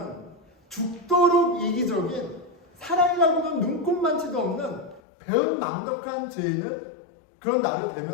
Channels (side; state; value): right; drops out; at 5.0 s